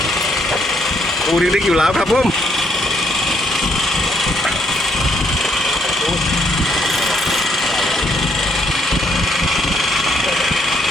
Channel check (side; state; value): both; normal; correlation 0.71